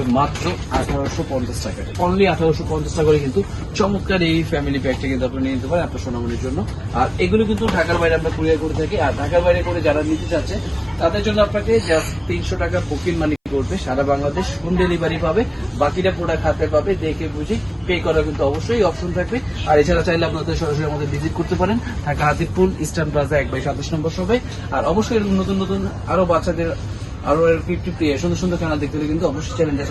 মাত্র 1850 টাকা। অনলি 1850 টাকা করে কিন্তু চমৎকার এই ফ্যামিলি প্যাকটা কিন্তু আপনি নিয়ে নিতে পারেন আপনার সোনামণির জন্য। আর এগুলো কিন্তু ঢাকার বাইরে আমরা কুরিয়ার করে থাকি। আর ঢাকার বাইরে করে যারা নিতে চাচ্ছে তাদের জন্য আপনাকে জাস্ট 300 টাকা বুকিং মানি করবে, সারা বাংলাদেশ হোম ডেলিভারি পাবে, বাকিটা প্রোডাক্ট হাতে পাবে, দেখে বুঝে পে করার কিন্তু অবশ্যই অপশন থাকবে। আর এছাড়া চাইলে আপনাদের সরাসরি আমাদের ভিজিট করতে পারেন ঢাকা হাতিপুল ইস্টার্ন প্লাজা 1/27 নম্বর শপে। আর অবশ্যই এরকম নতুন নতুন আরো বাচ্চাদের আরো 50 সুন্দর সুন্দর চ্যানেল দেখতে হলে কিন্তু অবশ্যই চ্যানেলটা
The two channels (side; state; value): both; identical; correlation 1.00